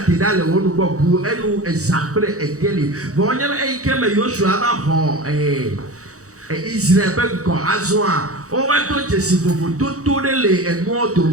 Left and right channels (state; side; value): late; left; 0.65 ms